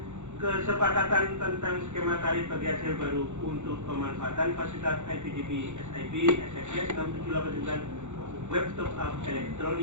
kesepakatan tentang skema tarif bagi hasil baru untuk pemanfaatan fasilitas IPTV, SIP, SFS 6789, web top up,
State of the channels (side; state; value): left; late; 0.84 ms